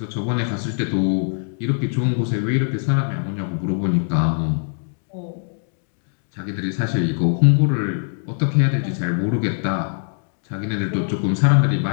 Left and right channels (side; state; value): right; silent; digital silence